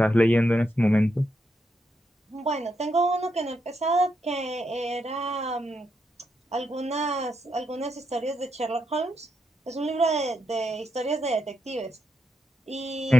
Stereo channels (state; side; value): normal; both; correlation 0.82